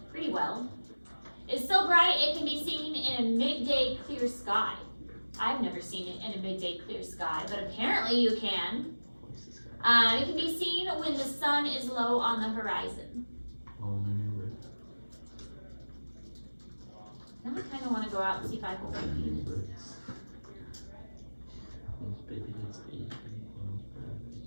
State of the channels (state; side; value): inverted; both; correlation -1.00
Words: pretty well. It's so bright it can be seen in a midday clear sky. I've never seen it in a midday clear sky, but apparently you can. It can be seen when the sun is low on the horizon. Now I kind of want to go out and see if I can find Venus.